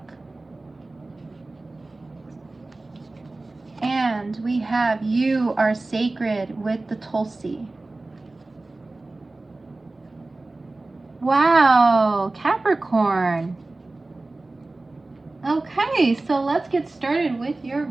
And we have You Are Sacred with the Tulsi. Wow, Capricorn. Okay, so let's get started with your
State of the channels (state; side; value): quieter; left; 3.1 dB